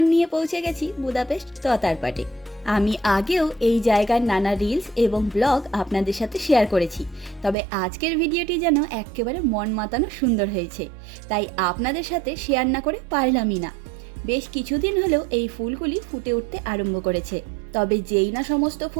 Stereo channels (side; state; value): left; drops out; at 7.6 s